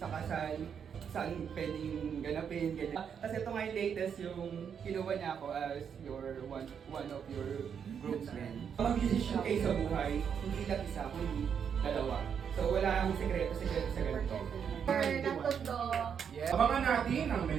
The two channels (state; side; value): quieter; left; 7.5 dB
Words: kasal, saan pwedeng ganapin, ganyan. Tapos ito nga yung latest, yung kinuha niya ako as your one of your groomsmen. Mag-desisyon kayo sa buhay, hindi lang isa, kundi dalawa. So wala akong sekreto sa ganito. Abangan natin ang